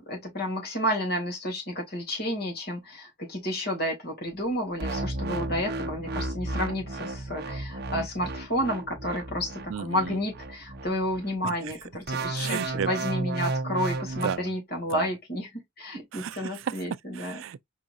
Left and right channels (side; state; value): both; normal; correlation 0.25